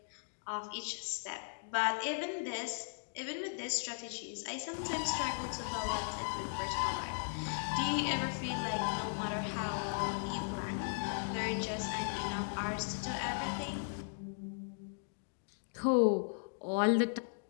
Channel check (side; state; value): right; silent; digital silence